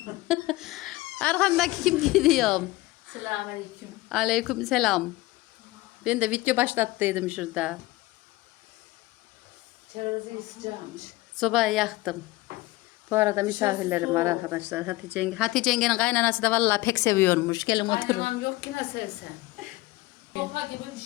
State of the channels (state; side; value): quieter; right; 19.4 dB